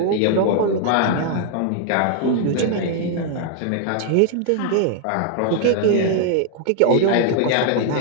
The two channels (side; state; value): both; different; correlation 0.00